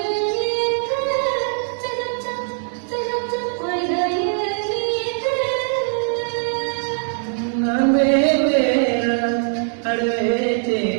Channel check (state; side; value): silent; left; 65 dB below the other